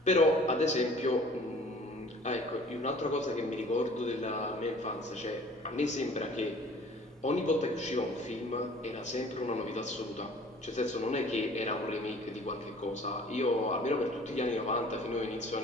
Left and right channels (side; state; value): both; normal; correlation 0.50